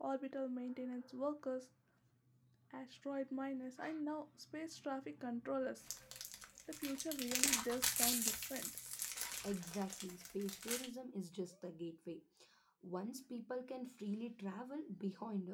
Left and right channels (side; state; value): both; identical; correlation 1.00